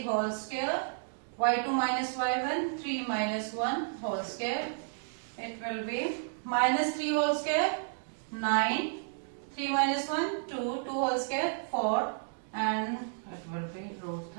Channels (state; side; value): silent; left; digital silence